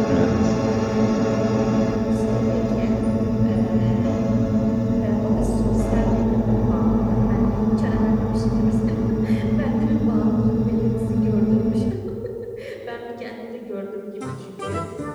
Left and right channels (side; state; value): both; identical; correlation 1.00